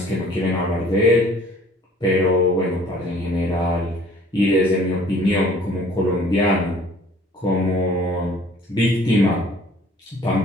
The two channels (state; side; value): normal; both; correlation 0.53